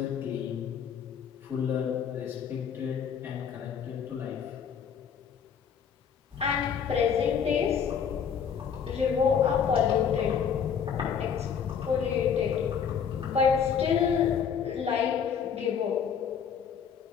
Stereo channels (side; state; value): right; quieter; 7.3 dB